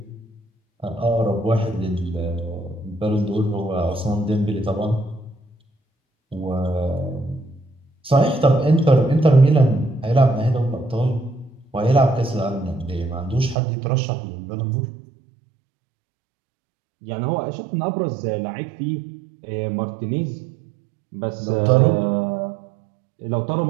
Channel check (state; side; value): drops out; left; at 13.6 s